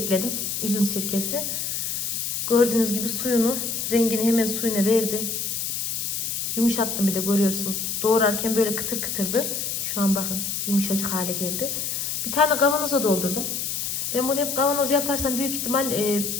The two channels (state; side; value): noise; left; hiss, 2 dB below the sound